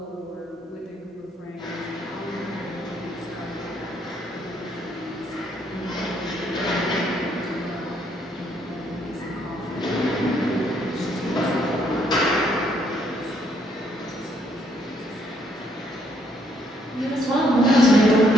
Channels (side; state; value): both; normal; correlation 0.70